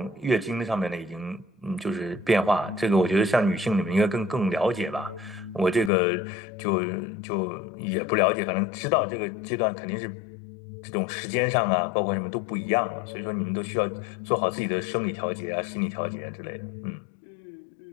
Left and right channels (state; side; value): drops out; right; at 5.9 s